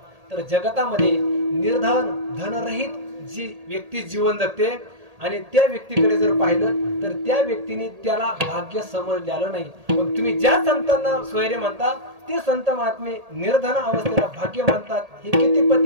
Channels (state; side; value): late; left; 1.8 ms